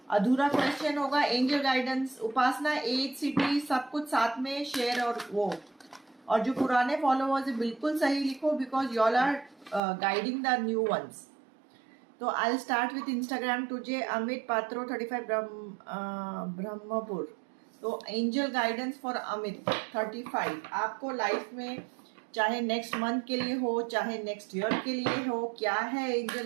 अधूरा क्वेश्चन होगा एंजल गाइडेंस, उपासना, एज, सिटी, सब कुछ साथ में शेयर और जो पुराने फॉलोअर्स है बिल्कुल सही लिखो, because y'all are guiding the new ones. तो I will start with Instagram today. Amit Patro 35 Brahmapur. तो एंजल गाइडेंस फॉर अमित 35। आपको लाइफ में चाहे नेक्स्ट मंथ के लिए हो, चाहे नेक्स्ट ईयर के लिए हो, क्या है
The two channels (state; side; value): drops out; left; at 9.8 s